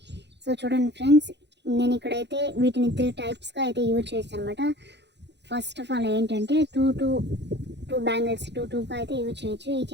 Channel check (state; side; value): late; left; 0.50 ms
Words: సో చూడండి ఫ్రెండ్స్, నేను ఇక్కడైతే వీటిని 3 టైప్స్గా అయితే యూజ్ చేస్తాను అనమాట. ఫస్ట్ ఆఫ్ ఆల్ ఏంటంటే టూ బ్యాంగిల్స్ 2గా అయితే యూజ్